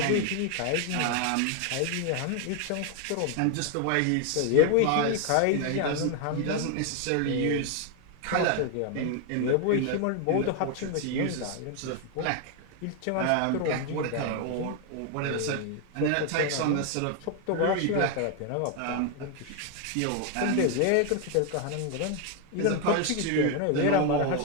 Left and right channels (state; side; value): different; both; correlation 0.01